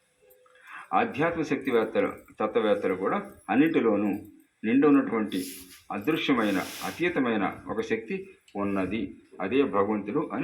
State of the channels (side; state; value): both; identical; correlation 1.00